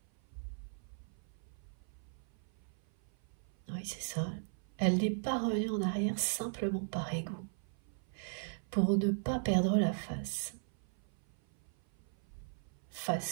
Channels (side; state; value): left; silent; 53 dB below the other